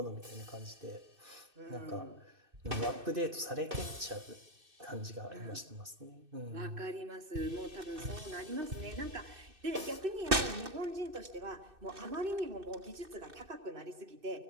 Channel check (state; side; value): late; left; 2.6 ms